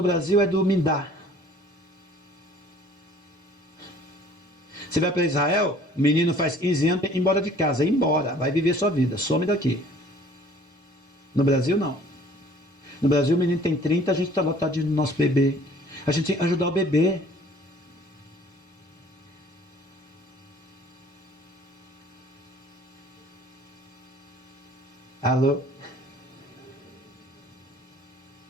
Brasil é do me dá. Você vai para Israel, o menino faz 15 anos, ir embora de casa, vai viver sua vida, some daqui. No Brasil não. No Brasil o menino tem 30, a gente está lotado no nosso bebê. A gente tem que ajudar o bebê. Alô?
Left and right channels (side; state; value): both; normal; correlation 0.53